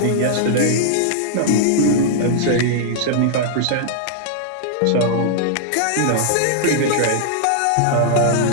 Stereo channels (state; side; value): different; both; correlation -0.01